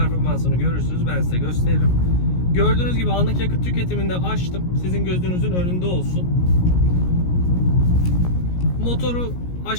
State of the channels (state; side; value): late; right; 17 ms